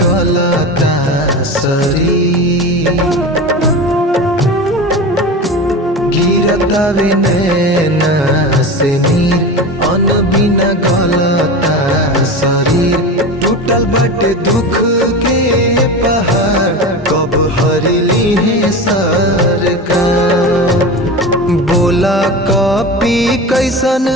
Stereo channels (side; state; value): both; normal; correlation 0.27